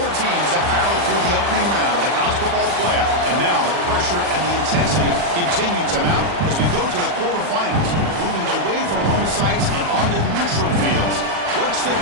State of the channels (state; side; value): late; left; 40 ms